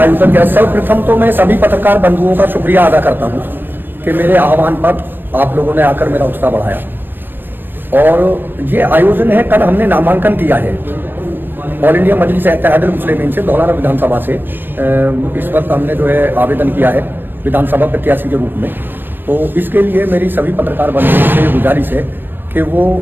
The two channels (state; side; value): late; left; 0.095 ms